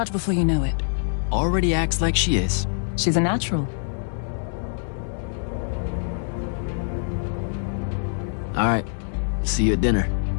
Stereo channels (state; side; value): silent; right; digital silence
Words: before you know it. Already acts like she is. She's a natural. All right. See you at dinner.